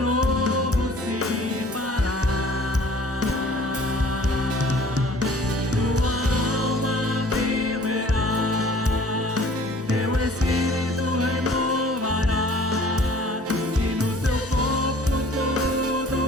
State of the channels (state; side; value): normal; both; correlation 0.51